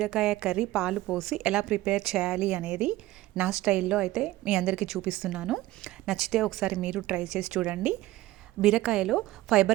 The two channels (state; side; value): quieter; left; 16.8 dB